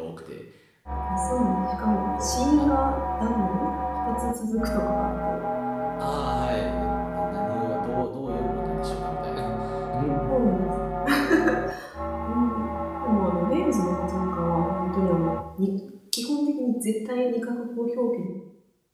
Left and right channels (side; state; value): both; identical; correlation 1.00